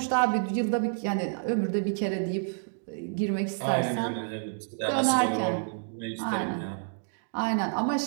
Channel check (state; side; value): silent; left; digital silence